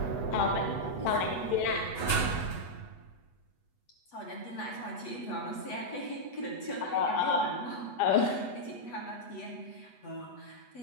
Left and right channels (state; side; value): late; right; 8.1 ms